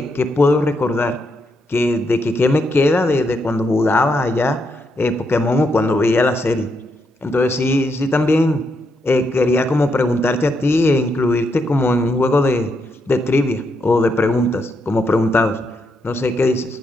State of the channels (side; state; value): both; normal; correlation 0.80